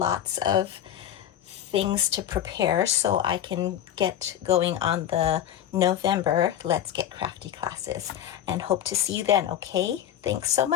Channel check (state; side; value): quieter; right; 10.9 dB